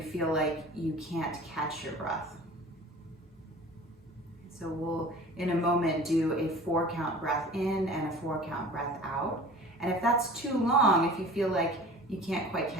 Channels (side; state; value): both; normal; correlation 0.43